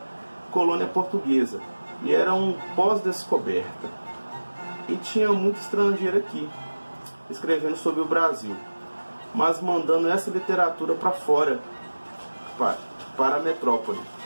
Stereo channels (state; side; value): inverted; both; correlation -1.00